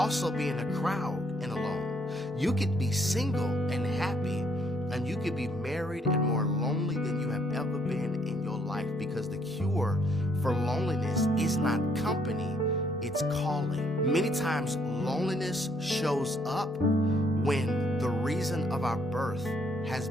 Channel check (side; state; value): both; normal; correlation 0.69